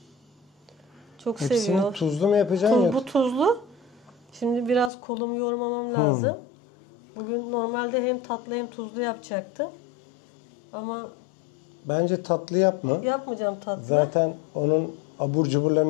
Çok Hepsini seviyor. tuzlu mu yapacaksın? Bu tuzlu. Şimdi biraz kolumu yoğurmamam lazım. Bugün normalde hem tatlı hem tuzlu yapacaktım. Ama Bence tatlı yapma. yapmayacağım tatlı. Zaten onun abur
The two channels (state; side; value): drops out; right; at 4.9 s